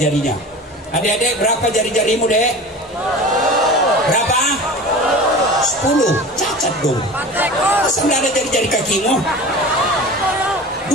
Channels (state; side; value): normal; both; correlation 0.35